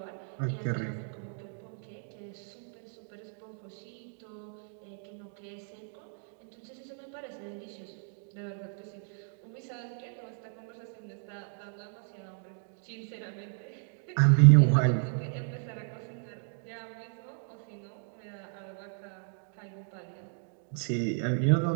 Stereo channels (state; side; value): silent; left; 55 dB below the other